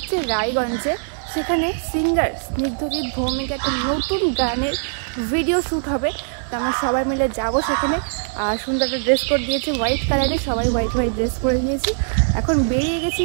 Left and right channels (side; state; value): left; silent; 56 dB below the other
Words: রায়গঞ্জে, সেখানে সিঙ্গার স্নিগ্ধজিৎ ভৌমিক একটা নতুন গানের ভিডিও শ্যুট হবে। তো আমরা সবাই মিলে যাব সেখানে। সুন্দর একটা ড্রেস কোড দিয়েছে হোয়াইট কালারের, সবাই হোয়াইট হোয়াইট ড্রেস পরে নিয়েছি। এখন বেরিয়ে গেছি